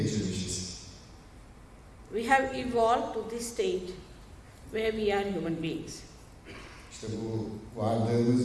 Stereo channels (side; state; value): both; identical; correlation 1.00